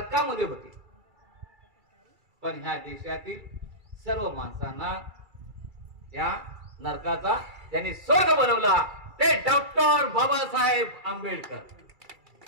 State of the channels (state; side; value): late; left; 2.3 ms